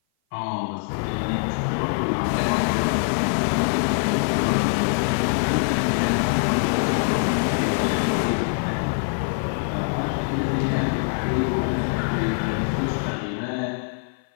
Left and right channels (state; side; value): silent; right; 56 dB below the other